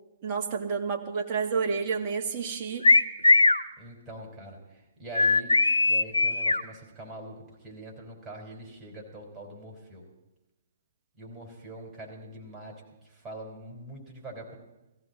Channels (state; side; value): inverted; both; correlation -0.89